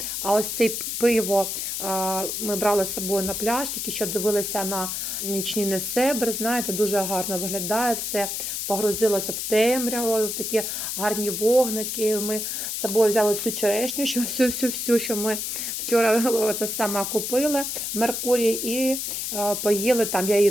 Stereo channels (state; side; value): noise; left; hiss, 3 dB below the sound